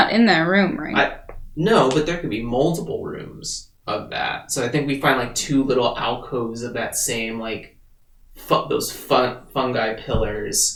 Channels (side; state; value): both; identical; correlation 1.00